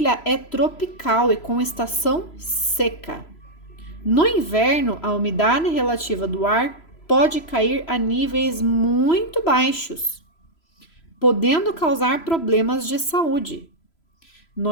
é tropical e com estação seca. No inverno, a umidade relativa do ar pode cair a níveis muito baixos, podendo causar problemas de saúde.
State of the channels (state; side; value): late; right; 3.0 ms